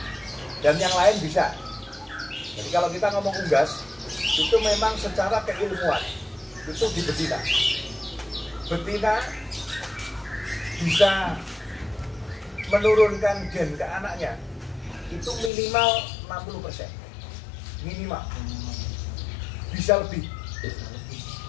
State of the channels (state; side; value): drops out; right; at 15.5 s